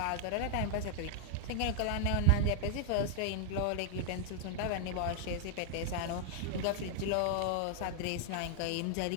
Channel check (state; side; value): different; both; correlation 0.00